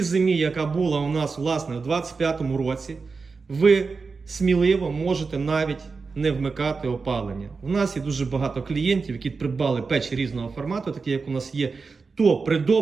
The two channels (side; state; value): left; quieter; 4.6 dB